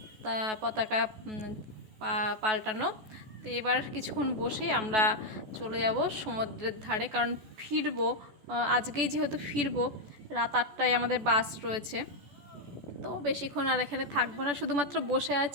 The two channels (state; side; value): late; left; 14 ms